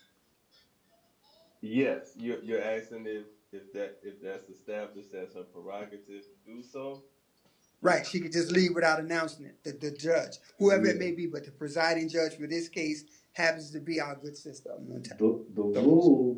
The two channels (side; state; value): both; identical; correlation 1.00